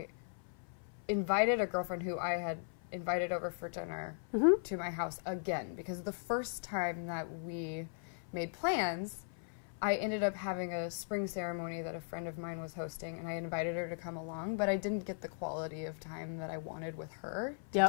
invited a girlfriend who I had invited over for dinner to my house again, because the first time that we made plans, I ended up having a spring ceremony that a friend of mine was hosting, and I invited her to come along, but I didn't get the quality of time that I wanted with her to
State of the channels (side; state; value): right; silent; 52 dB below the other